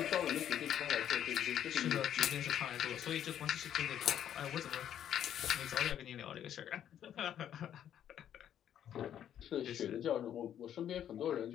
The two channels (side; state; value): right; quieter; 10.2 dB